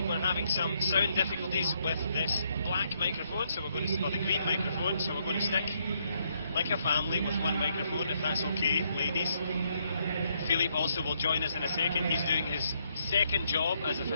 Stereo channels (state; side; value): inverted; both; correlation -0.74